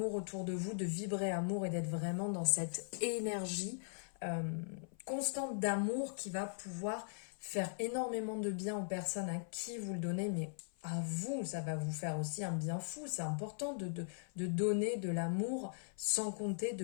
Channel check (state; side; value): silent; right; 51 dB below the other